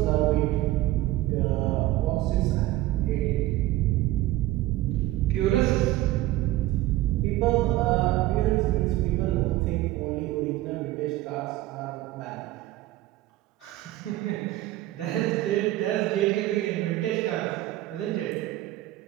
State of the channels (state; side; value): quieter; left; 16.4 dB